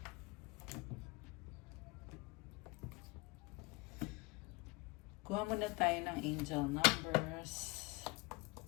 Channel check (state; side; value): quieter; right; 26.0 dB